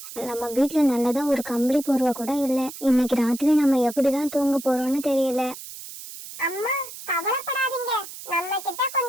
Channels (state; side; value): noise; right; hiss, 13 dB below the sound